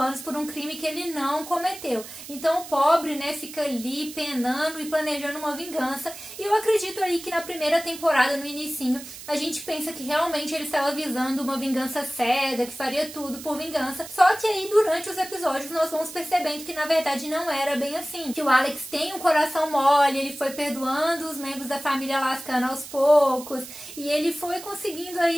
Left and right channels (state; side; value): noise; right; hiss, 14 dB below the sound